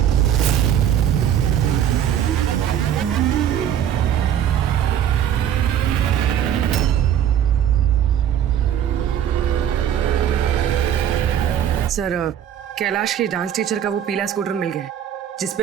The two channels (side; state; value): left; quieter; 9.9 dB